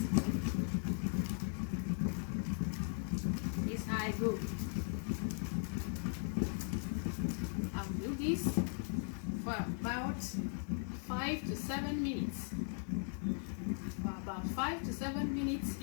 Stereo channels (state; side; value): silent; right; 52 dB below the other